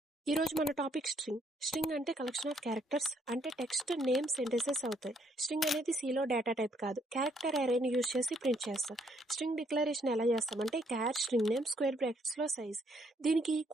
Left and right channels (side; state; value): both; normal; correlation 0.69